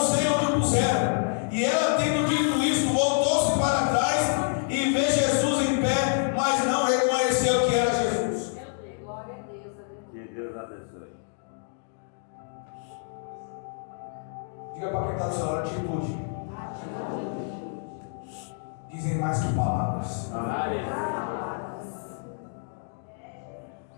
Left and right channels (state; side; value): silent; right; 59 dB below the other